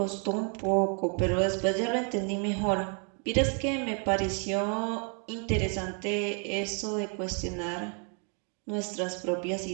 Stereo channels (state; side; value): quieter; left; 39.4 dB